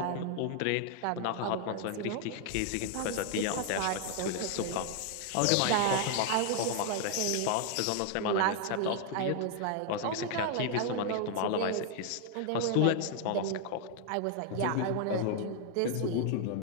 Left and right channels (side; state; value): both; different; correlation 0.00